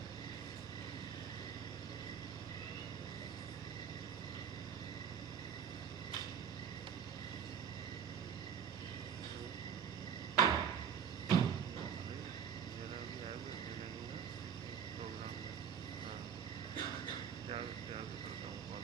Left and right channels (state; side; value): quieter; left; 7.8 dB